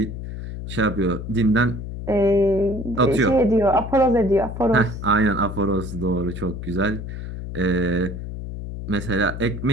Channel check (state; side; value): noise; left; hum, 8 dB below the sound